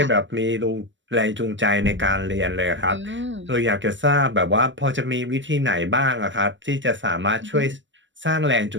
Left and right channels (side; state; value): left; late; 0.54 ms